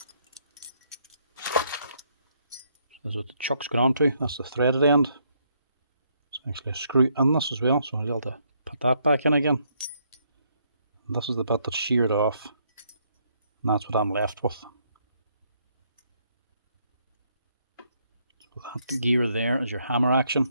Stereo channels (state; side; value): inverted; both; correlation -0.72